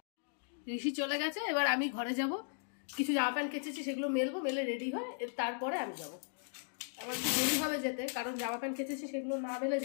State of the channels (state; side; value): silent; right; digital silence